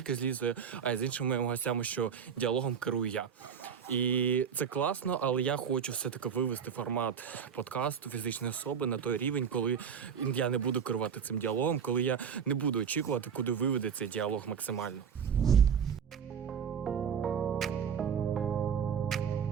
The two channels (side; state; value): left; quieter; 7.2 dB